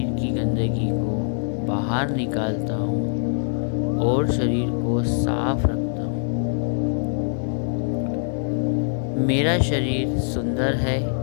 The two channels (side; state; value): right; silent; digital silence